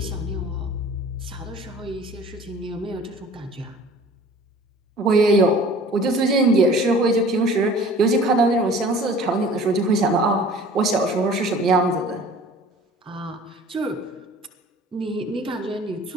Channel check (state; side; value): normal; both; correlation 0.47